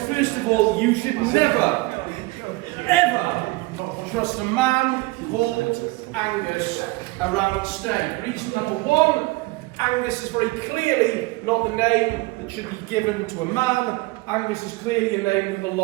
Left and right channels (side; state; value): left; quieter; 22.5 dB